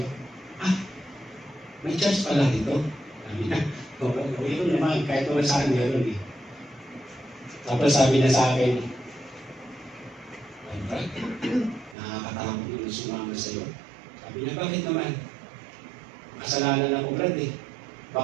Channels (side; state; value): left; drops out; at 12.0 s